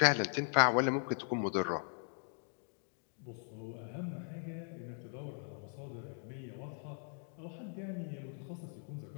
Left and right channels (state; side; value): silent; right; 52 dB below the other